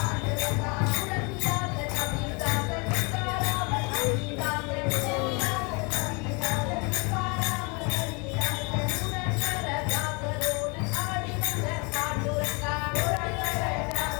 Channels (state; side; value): quieter; right; 30.9 dB